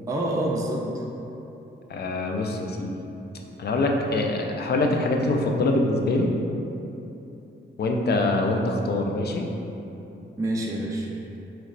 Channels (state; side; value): normal; both; correlation 0.52